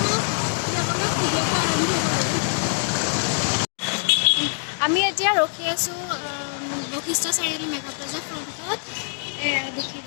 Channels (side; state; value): right; silent; digital silence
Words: বলক ভিডিঅ'টো আৰম্ভ কৰোঁ আমি এতিয়া ৰখি আছোঁ বশিষ্ঠ চাৰিআলি মেঘা প্লাজাৰ ফ্ৰণ্টত